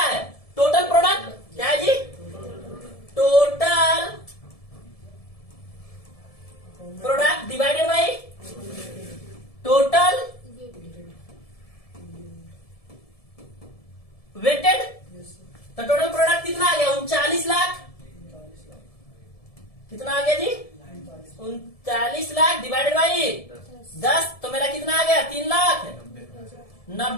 है, टोटल प्रोडक्ट, क्या है जी, total product divided by total weighted. तो टोटल प्रोडक्ट कितना आ गया, 39 लाख, कितना आ गया जी 39 लाख डिवाइडेड बाई 10, तो मेरा कितना आ गया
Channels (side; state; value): right; late; 1.7 ms